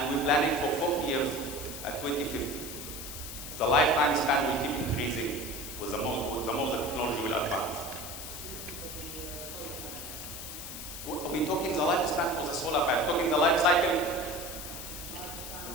we're planning for 40 years at 2050. The lifetime span will keep increasing with the more the technology will advance. We're talking the lifespan for the solar panel, talking the life cycle.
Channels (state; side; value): noise; left; hiss, 9 dB below the sound